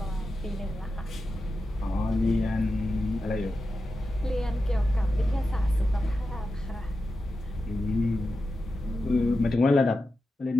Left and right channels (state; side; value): normal; both; correlation 0.91